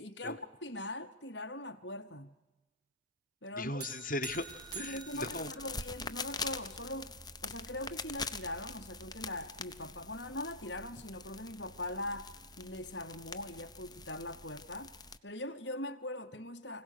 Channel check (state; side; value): normal; both; correlation -0.08